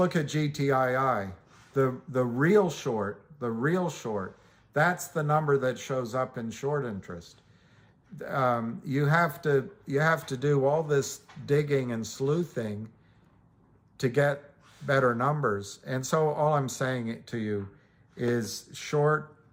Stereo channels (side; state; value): both; identical; correlation 1.00